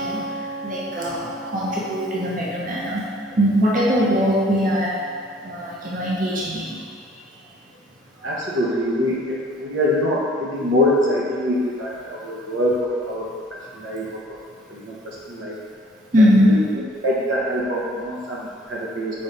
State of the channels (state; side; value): normal; both; correlation 0.56